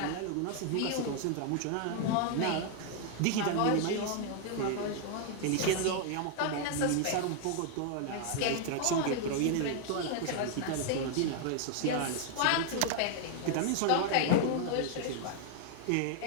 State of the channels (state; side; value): different; both; correlation 0.00